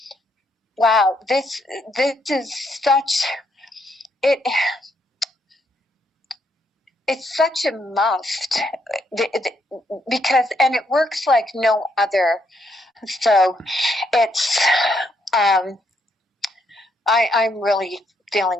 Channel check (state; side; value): normal; both; correlation 0.74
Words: wow, this is such it. It's such a must because and it works like no other. So it's I'm really